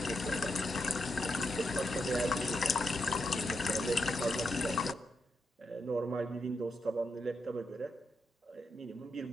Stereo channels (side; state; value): both; normal; correlation 0.83